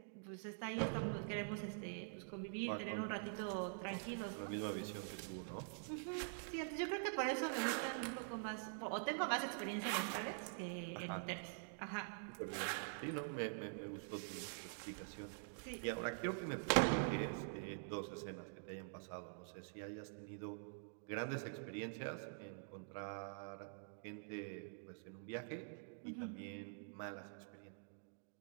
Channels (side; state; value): left; silent; digital silence